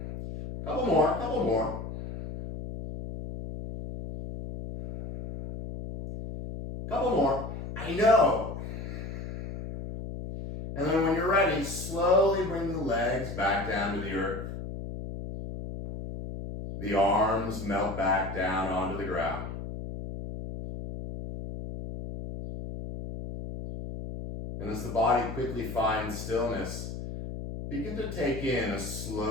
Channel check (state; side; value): noise; left; hum, 8 dB below the sound